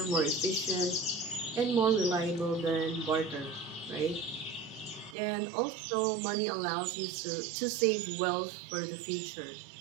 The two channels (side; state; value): left; drops out; at 5.2 s